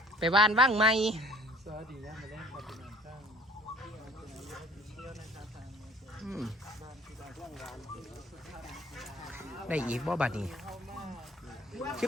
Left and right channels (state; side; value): normal; both; correlation 0.53